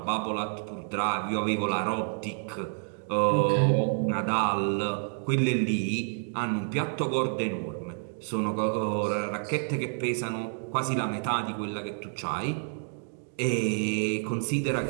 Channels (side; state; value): left; silent; 59 dB below the other